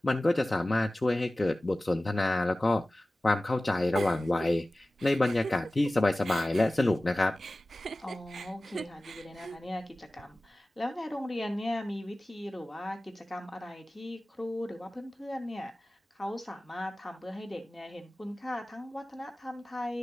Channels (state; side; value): normal; both; correlation 0.97